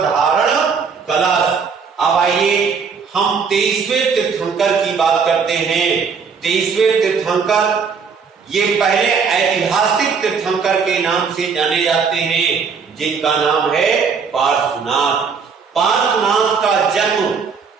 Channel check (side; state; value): left; quieter; 5.7 dB